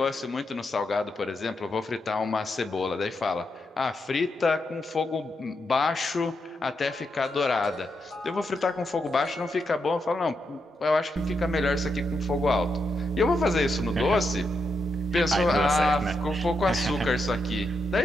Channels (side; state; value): both; normal; correlation 0.83